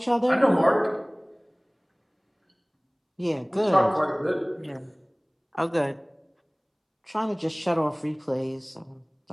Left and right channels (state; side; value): identical; both; correlation 1.00